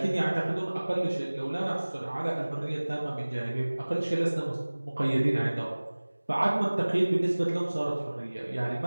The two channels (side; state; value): both; inverted; correlation -1.00